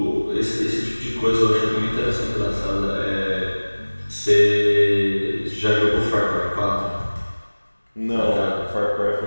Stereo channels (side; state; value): both; inverted; correlation -1.00